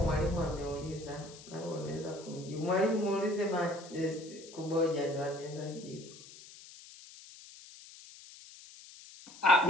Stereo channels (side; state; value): left; noise; hiss, 18 dB below the sound